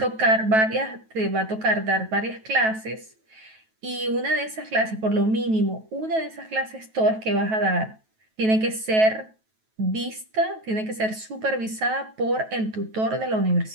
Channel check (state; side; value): late; left; 9.2 ms